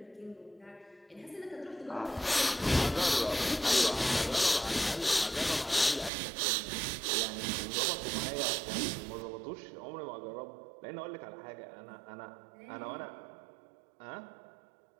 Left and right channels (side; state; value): left; drops out; at 6.1 s